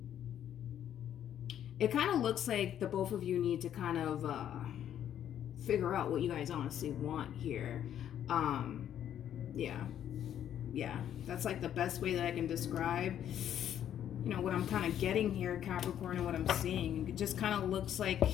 It kind of looks like the both of you need to kind of figure out what you guys honestly want here. Yeah, that's like the best way that I can describe, what I'm kind of getting here, Capricorn, and what I'm seeing. It just kind of looks like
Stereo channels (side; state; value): right; quieter; 10.3 dB